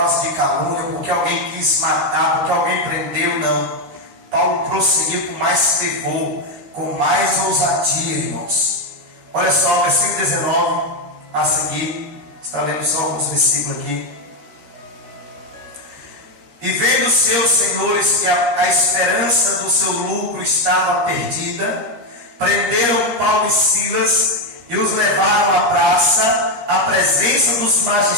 de calúnia, porque alguém quis matar, porque alguém prendeu, não. Paulo prosseguiu com mais fervor, com mais ousadia, irmãos. Olha só, versículo 19 a seguir. Está lendo só alguns versículos aqui. E vendo seus senhores que a esperança do seu lucro estava perdida, prenderam Paulo e Silas e os levaram à praça, à presença dos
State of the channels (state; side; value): late; left; 13 ms